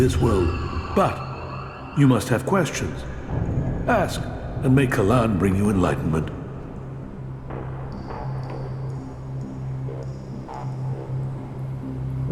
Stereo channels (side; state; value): both; identical; correlation 1.00